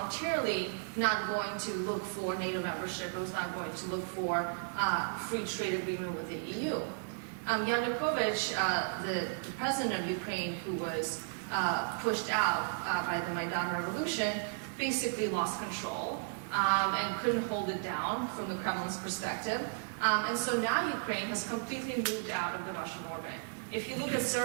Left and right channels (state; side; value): silent; left; 55 dB below the other